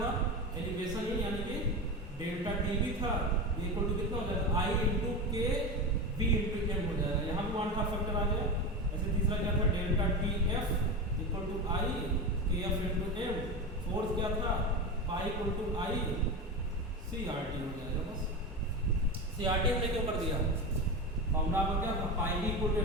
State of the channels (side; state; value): both; normal; correlation 0.22